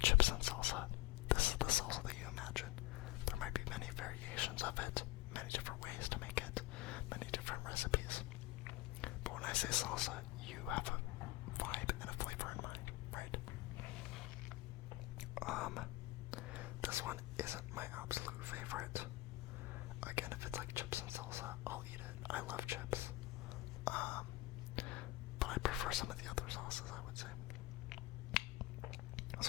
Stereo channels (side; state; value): right; quieter; 18.7 dB